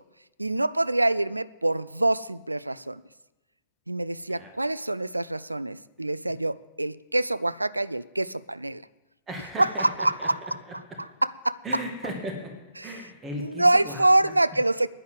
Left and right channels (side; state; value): both; inverted; correlation -0.95